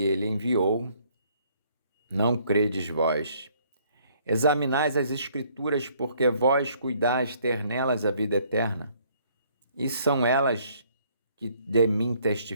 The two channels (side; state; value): both; inverted; correlation -0.64